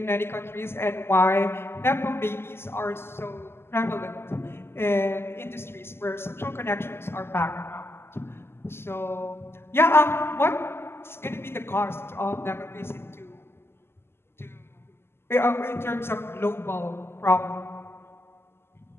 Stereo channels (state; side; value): late; right; 0.12 ms